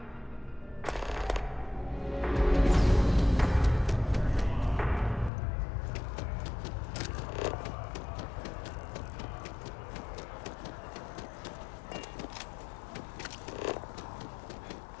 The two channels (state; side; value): drops out; right; at 5.3 s